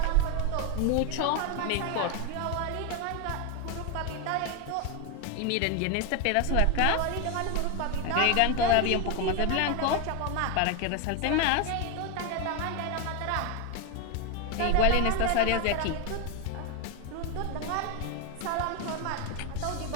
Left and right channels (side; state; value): both; different; correlation 0.01